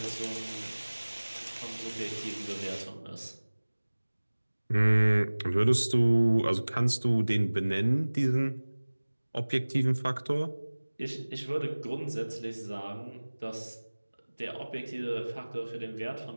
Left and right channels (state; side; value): inverted; both; correlation -1.00